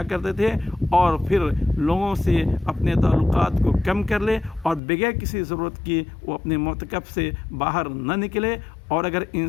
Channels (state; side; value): drops out; right; at 4.8 s